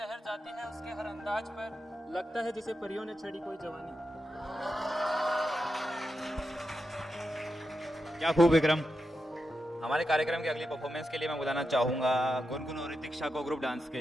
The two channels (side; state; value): both; normal; correlation 0.88